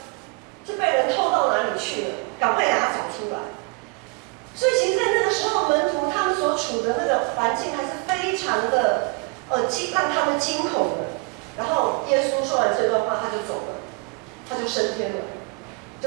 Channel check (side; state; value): left; quieter; 31.1 dB